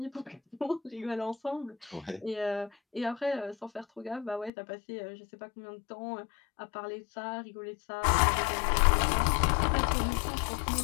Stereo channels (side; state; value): right; drops out; at 4.5 s